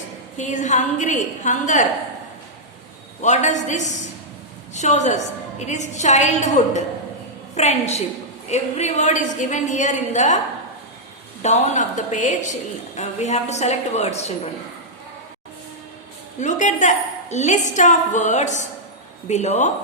He is hungry. Hunger. What does this shows us? It is childhood. Friendship. Every word is given here in the down of the page. We have to select words, children. Look at the list of words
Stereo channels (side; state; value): both; normal; correlation -0.08